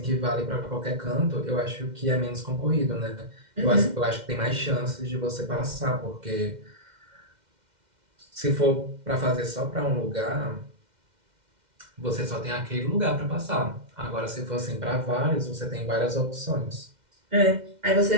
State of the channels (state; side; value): late; left; 2.1 ms